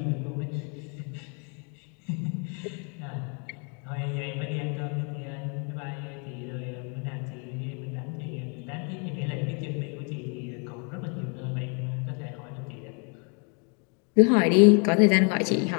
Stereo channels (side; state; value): right; quieter; 37.6 dB